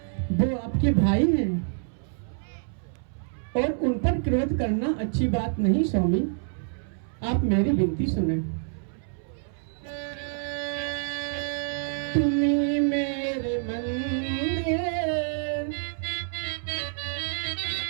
वो आपके भाई हैं और उन पर क्रोध करना अच्छी बात नहीं। स्वामी, आप मेरी विनती सुने। तुम्ही मेरे मंदिर,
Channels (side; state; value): left; silent; 60 dB below the other